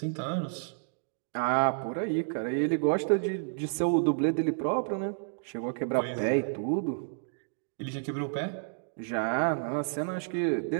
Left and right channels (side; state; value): left; silent; digital silence